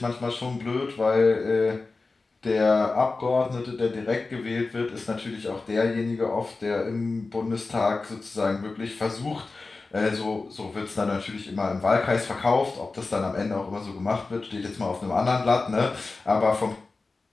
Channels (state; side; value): quieter; right; 3.8 dB